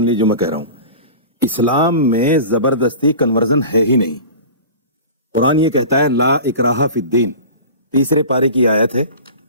लीजिए जो मैं कह रहा हूं। इस्लाम में जबरदस्ती कन्वर्जन है ही नहीं। कुरान ये कहता है ला इकराहा फिद्दीन, 3 पारे की आयत है।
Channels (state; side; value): inverted; both; correlation -0.37